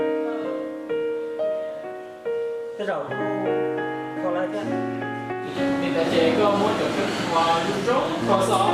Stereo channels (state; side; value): identical; both; correlation 1.00